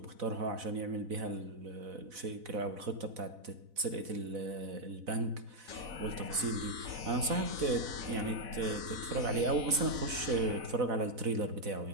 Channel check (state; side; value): late; left; 4.0 ms